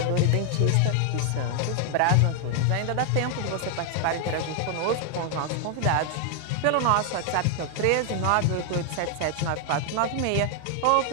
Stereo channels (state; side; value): different; both; correlation 0.00